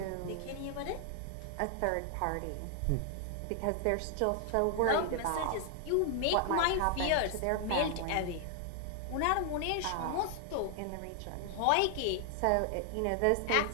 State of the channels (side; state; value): both; different; correlation 0.00